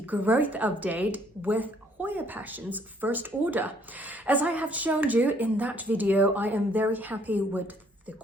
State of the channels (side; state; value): both; normal; correlation 0.64